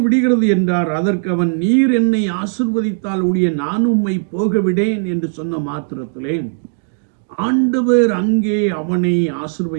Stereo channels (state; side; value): silent; left; digital silence